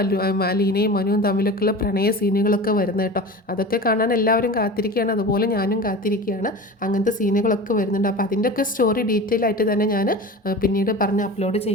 അലീനയും മനുവും തമ്മിലൊക്കെയുള്ള പ്രണയ സീനുകളൊക്കെ വരുന്നത് കേട്ടോ. അതൊക്കെ കാണാൻ എല്ലാവരും കാത്തിരിക്കുകയാണ്, അതുപോലെ ഞാനും കാത്തിരിക്കുകയാണ്. അങ്ങനത്തെ സീനുകളൊക്കെ വരുന്നുണ്ട്. അപ്പോൾ അതിൻ്റെയൊക്കെ സ്റ്റോറി ഡീറ്റെയിൽ ആയിട്ട് തന്നെ ഞാൻ പിന്നീട് പറഞ്ഞ് അപ്ലോഡ്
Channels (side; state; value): both; normal; correlation 0.33